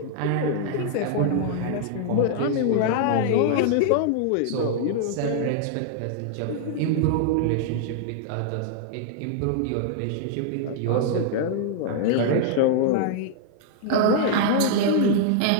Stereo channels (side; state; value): both; different; correlation -0.01